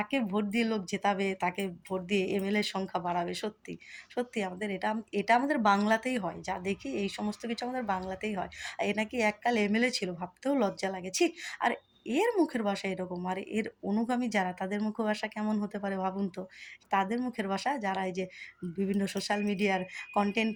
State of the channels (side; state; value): both; identical; correlation 1.00